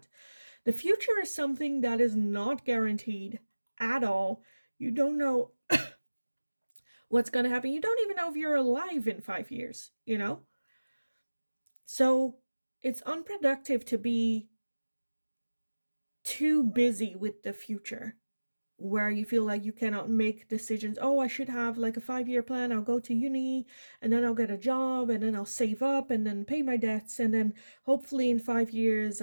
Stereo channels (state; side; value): inverted; both; correlation -1.00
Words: The future is something that is not guaranteed at all. You don't know what's going to happen. You don't even know if you're alive in 5 years, you know? So it's unproductive to be too busy with the future where you feel like you cannot make decisions. Oh, I should have like a 5 year plan. I'll go to uni and then I'll get a job and then I'll save up and then pay my debts. And then hopefully in 5 years